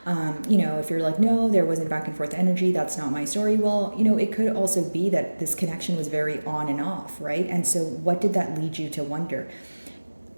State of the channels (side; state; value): both; inverted; correlation -1.00